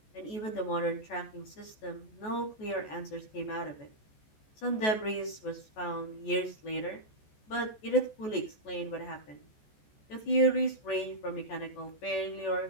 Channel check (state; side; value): late; right; 14 ms